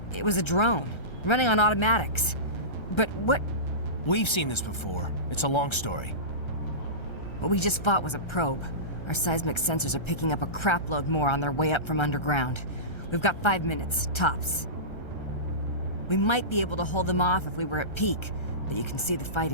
it was a drone, running on automatics. But what... We've seen this before. It's a long story. What we just fought was a probe. Our seismic sensors are picking up a crapload more on their way up from underground. We've got 5 minutes, tops. We might be able to hold them off if we were at peak, but you can see the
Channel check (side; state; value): right; late; 1.3 ms